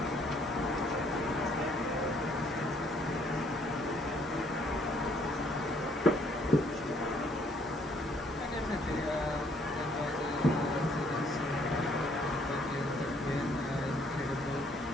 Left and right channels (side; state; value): both; normal; correlation 0.65